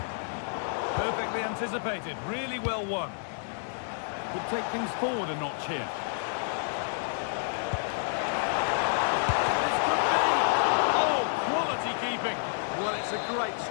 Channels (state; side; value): silent; right; digital silence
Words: Perfectly anticipated, really well won. Could take things forward a notch here. This could be! Oh, quality keeping! Well, it's a great